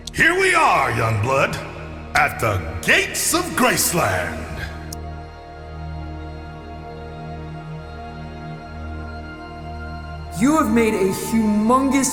Here we are, young blood, at the gates of Graceland. You have made a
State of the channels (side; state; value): both; identical; correlation 1.00